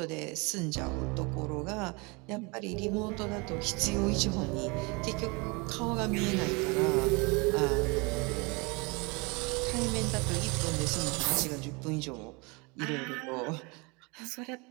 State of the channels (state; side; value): quieter; left; 28.6 dB